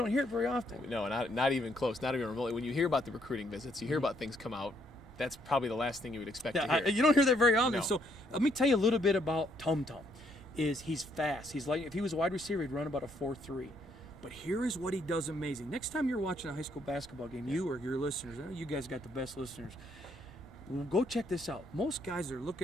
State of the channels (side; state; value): both; normal; correlation 0.71